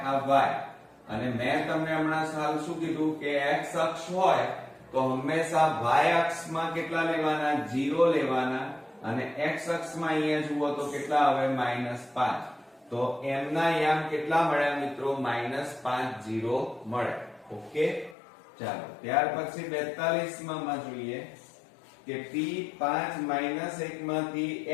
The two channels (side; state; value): right; drops out; at 18.2 s